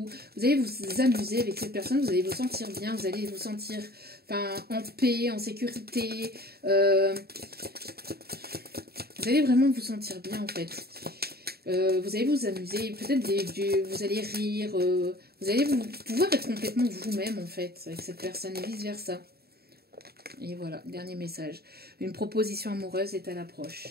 vous allez vous amuser avec cette personne, vous allez vous sentir bien, vous allez vous sentir en paix, en sécurité. Vous allez vraiment vous sentir bien en fait. Vous allez vous amuser, peut-être vous allez rire, vous allez pouvoir être complètement vous-même en fait avec cette personne et vice versa. Et voilà, dernier message. Une proposition amoureuse est à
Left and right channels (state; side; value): late; left; 0.46 ms